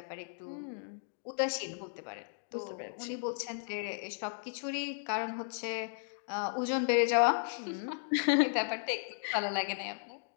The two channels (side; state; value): right; silent; digital silence